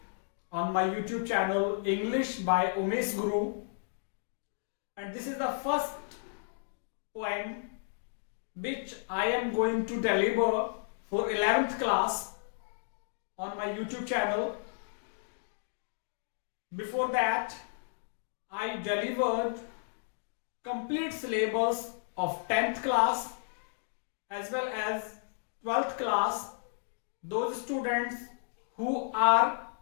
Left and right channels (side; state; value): right; silent; digital silence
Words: on my YouTube channel English by Umesh Guru. And this is the first poem which I am going to deliver for 11th class on my YouTube channel. Before that, I delivered complete syllabus of 10th class as well as 12th class. Those students who are